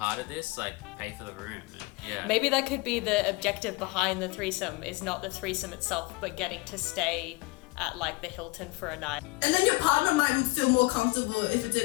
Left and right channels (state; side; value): quieter; right; 24.3 dB